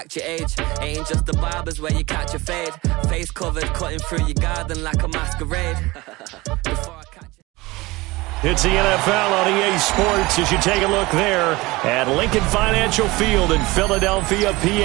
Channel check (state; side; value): quieter; left; 21.4 dB